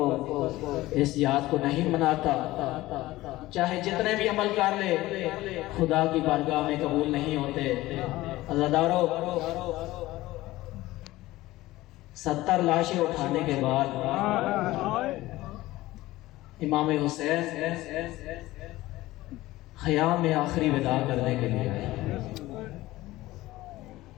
اس یاد کو نہیں مناتا، چاہے جتنے بھی عمل کر لے، خدا کی بارگاہ میں قبول نہیں ہوتے. عزادارو، 70 لاشیں اٹھانے کے بعد امام حسین خیام میں آخری وداع کرنے کے لیے آئے.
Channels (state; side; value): quieter; right; 17.6 dB